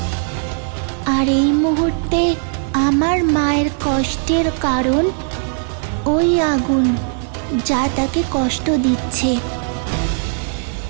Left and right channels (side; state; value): left; silent; 67 dB below the other